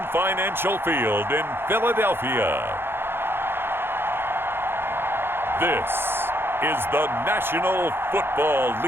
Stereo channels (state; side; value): late; left; 0.11 ms